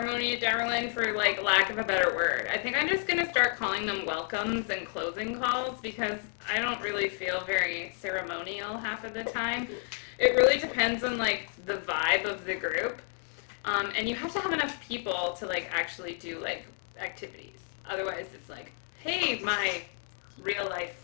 Darylyn, for like lack of a better word. I think I'm just gonna start calling them welcomes and closing calls because I don't really feel very ceremonial half of the time. It really depends on like the vibe of the group, and you have to have enough people to like actually do like activities. Otherwise, it's like, hey, my real life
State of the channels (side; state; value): right; silent; 57 dB below the other